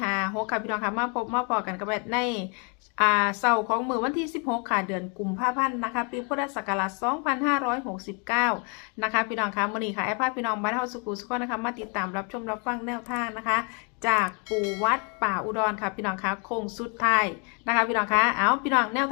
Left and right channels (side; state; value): right; quieter; 36.1 dB